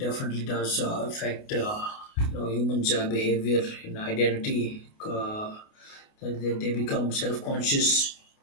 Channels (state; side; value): late; right; 28 ms